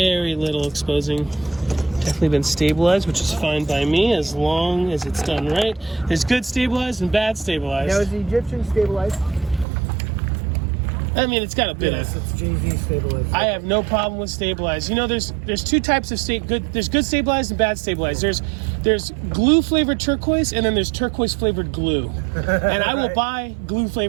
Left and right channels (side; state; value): left; drops out; at 9.7 s